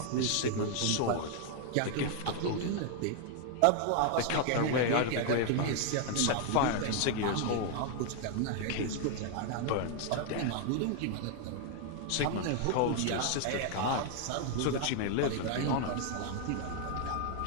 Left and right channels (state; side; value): different; both; correlation 0.00